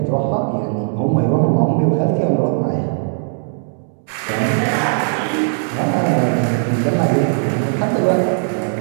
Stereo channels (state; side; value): silent; left; digital silence